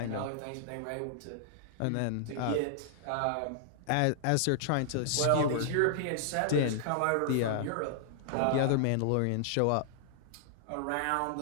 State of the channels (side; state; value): both; different; correlation 0.00